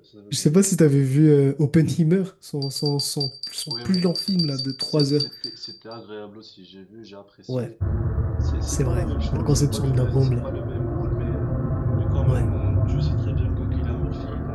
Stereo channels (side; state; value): both; identical; correlation 1.00